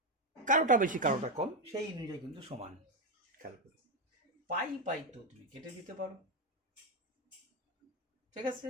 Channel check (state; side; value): normal; both; correlation 0.07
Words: কারোটা বেশি কারোটা কম, সেই অনুযায়ী কিন্তু সমান। খেয়াল করো, পাই তো তুমি কেটে দিতে পারো। ঠিক আছে,